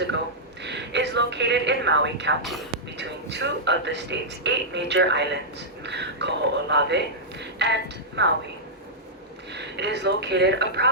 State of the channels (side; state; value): both; normal; correlation -0.10